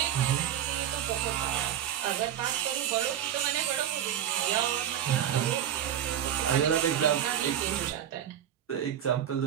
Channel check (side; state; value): left; quieter; 10.3 dB